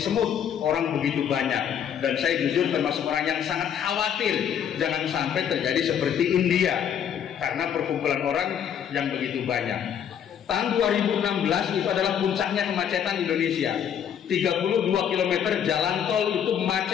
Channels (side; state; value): right; quieter; 8.8 dB